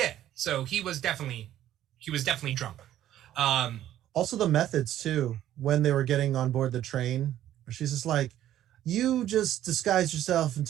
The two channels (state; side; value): quieter; left; 12.3 dB